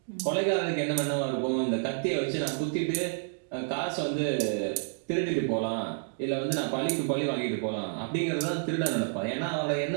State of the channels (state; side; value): silent; left; digital silence